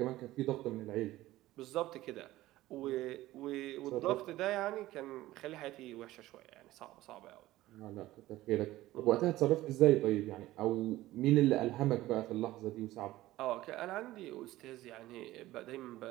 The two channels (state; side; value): quieter; left; 16.3 dB